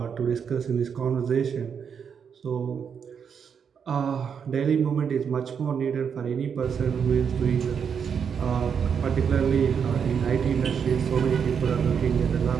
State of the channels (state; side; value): quieter; left; 7.0 dB